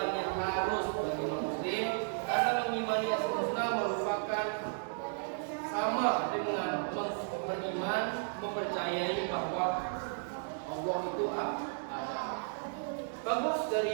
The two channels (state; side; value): silent; left; 55 dB below the other